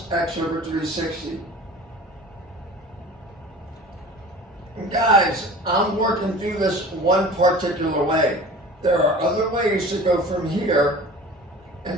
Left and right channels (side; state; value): both; normal; correlation 0.40